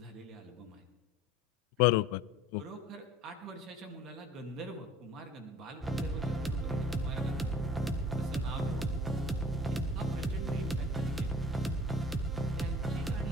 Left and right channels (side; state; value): both; normal; correlation 0.45